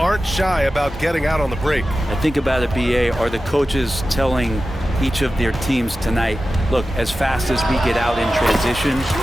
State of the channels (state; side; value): normal; both; correlation 0.94